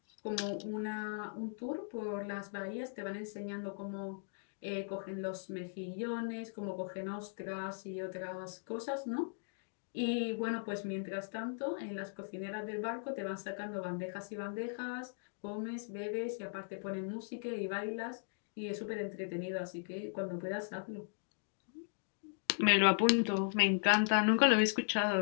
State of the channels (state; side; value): silent; right; digital silence